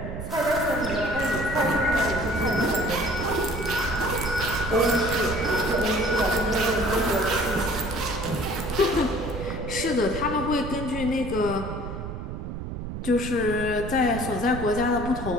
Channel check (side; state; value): right; noise; rumble, 7 dB below the sound